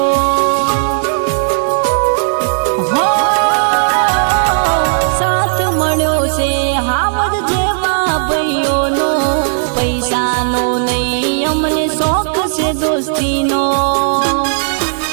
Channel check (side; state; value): left; silent; 69 dB below the other